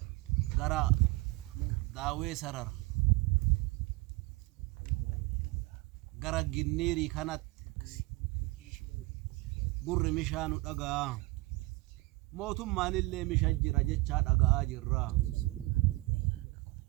gara daawee sarara gara ginniirii kanatti gurri mishaa nu dhagaa mootummaan illee misha jira jechaa dhaga'aa jirra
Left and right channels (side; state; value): left; quieter; 22.1 dB